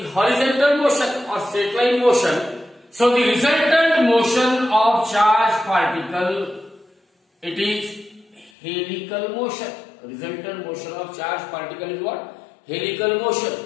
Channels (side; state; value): right; drops out; at 8.5 s